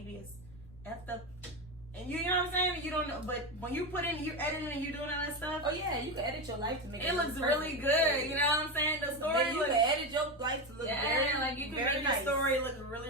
is effed up. And you know what I'm saying? You don't know, but when you put in, you're editing and you're doing all that stuff, Oh yeah, you can edit your life to make it looks really good. You know what I'm saying? The story You looks, can edit your life to look very, like you can very make nice. the story look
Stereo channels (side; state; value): left; noise; rumble, 23 dB below the sound